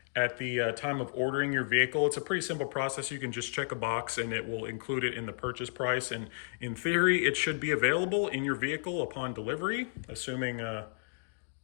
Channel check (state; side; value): silent; right; digital silence